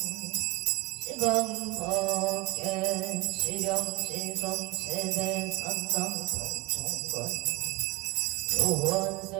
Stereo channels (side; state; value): left; quieter; 21.2 dB